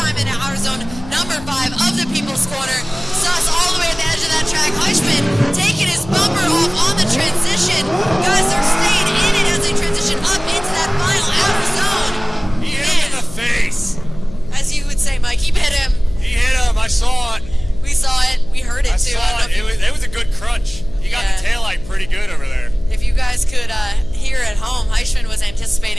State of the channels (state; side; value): noise; left; hum, 16 dB below the sound